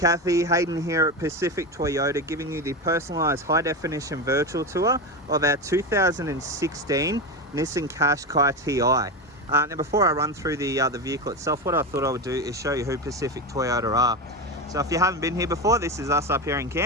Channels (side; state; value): both; normal; correlation 0.18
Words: Hayden here at Pacific Toyota, giving you the personalised high-definition virtual tour of our 2016 Nissan Qashqai TI. Now before I run through the vehicle itself, what I thought I would do is show you who Pacific Toyota are. So if you haven't been here before, this is us up here in